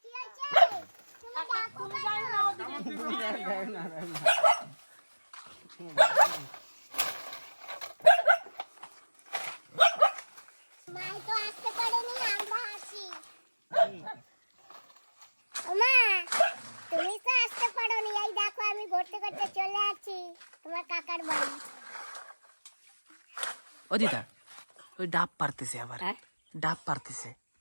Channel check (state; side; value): inverted; both; correlation -1.00